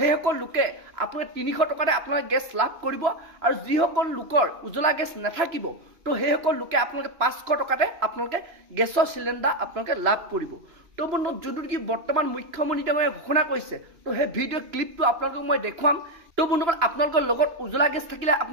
লোকে আপোনালোকে 300 টকাতে আপোনালোকে গেছ লাভ কৰিব। আৰু যিসকল লোকৰ উজ্জ্বলা গেছ নাথাকিব, তো সেইসকল লোকে আপোনালোকে 500 টকাতে আপোনালোকে গেছৰ চিলিণ্ডাৰ আপোনালোকে লাভ কৰিব। তো বন্ধুসকল যোনটো নেকি বৰ্তমান মুখ্যমন্ত্ৰী ডাঙৰীয়াই ঘোষণা কৰিছে, তো সেই ভিডিঅ' ক্লিপটো আপোনালোকক মই দেখুৱাম। তো বন্ধুসকল আপোনালোকৰ লগত উজ্জ্বলা গেছ থাকিলে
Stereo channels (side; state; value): left; late; 3.0 ms